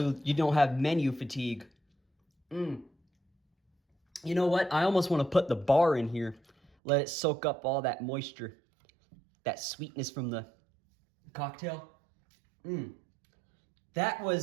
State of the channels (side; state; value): left; drops out; at 6.7 s